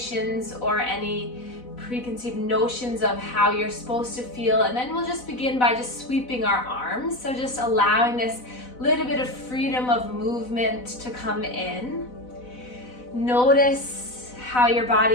or any preconceived notions of how you're supposed to feel. And then we'll just begin by just sweeping our arms. So just allowing this little bit of freedom of movement to come in. Notice how your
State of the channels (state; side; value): late; right; 4.0 ms